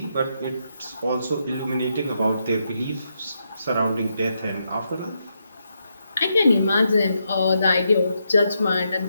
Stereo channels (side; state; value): both; inverted; correlation -0.81